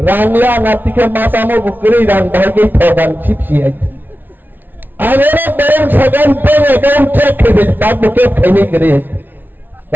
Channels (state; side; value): late; left; 0.090 ms